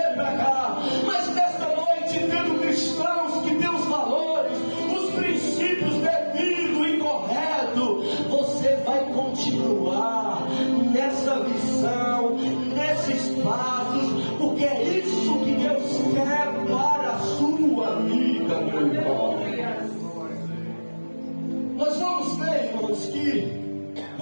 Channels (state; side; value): inverted; both; correlation -1.00